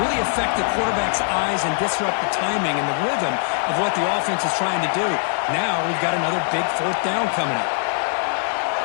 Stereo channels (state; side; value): silent; right; 64 dB below the other